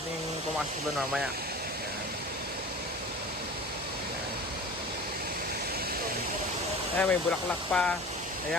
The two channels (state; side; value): normal; both; correlation 0.38